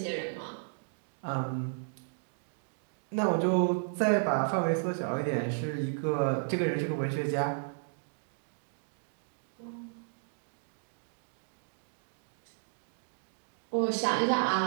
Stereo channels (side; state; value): left; silent; digital silence